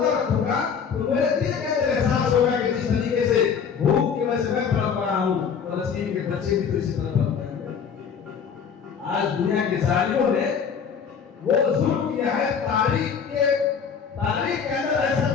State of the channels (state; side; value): quieter; right; 6.8 dB